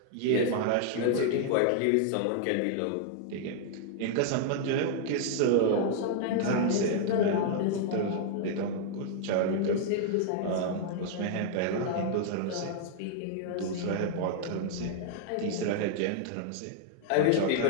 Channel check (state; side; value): different; both; correlation -0.01